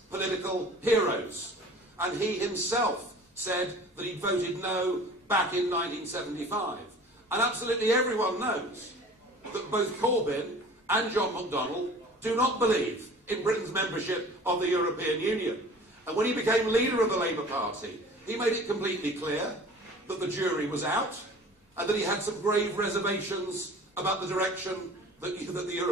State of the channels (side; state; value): both; normal; correlation 0.44